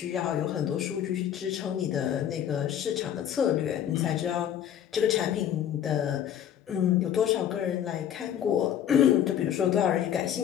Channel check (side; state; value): right; quieter; 10.0 dB